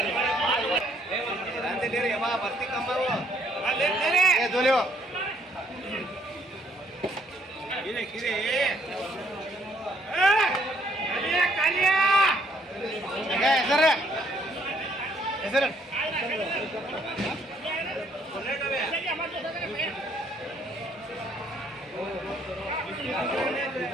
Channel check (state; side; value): normal; both; correlation 0.67